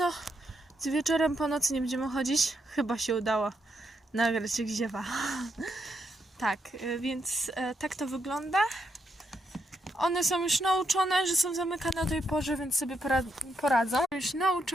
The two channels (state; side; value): normal; both; correlation 0.79